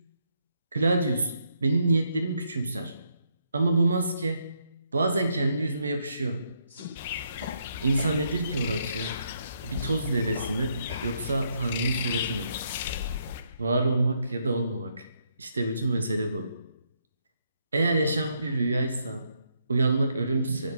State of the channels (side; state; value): both; inverted; correlation -0.75